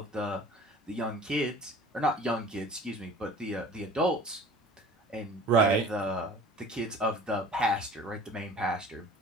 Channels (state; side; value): normal; both; correlation 0.45